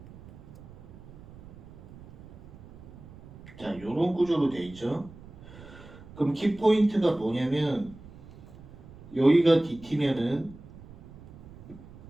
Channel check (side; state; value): right; noise; rumble, 19 dB below the sound